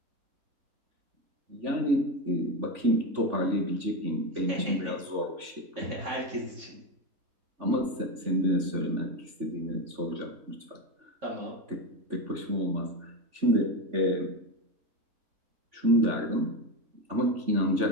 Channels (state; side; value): late; left; 3.5 ms